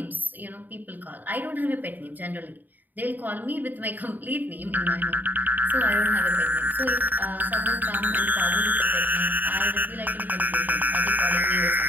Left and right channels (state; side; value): late; left; 0.086 ms